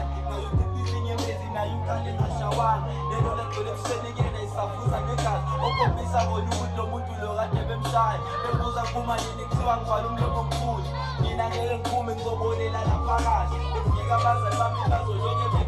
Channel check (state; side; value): identical; both; correlation 1.00